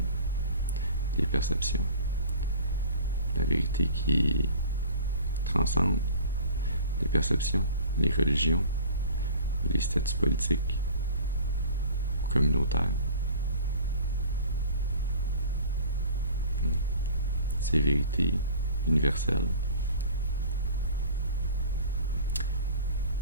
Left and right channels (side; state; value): both; inverted; correlation -0.43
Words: les perceptions. La vérité qui transcende les perceptions, les religions, les statuts politiques ou communautaires. Ces vérités universelles,